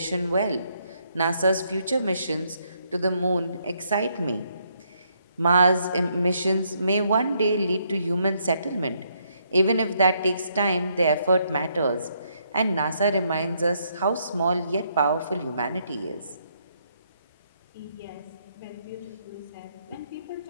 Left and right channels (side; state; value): both; inverted; correlation -0.74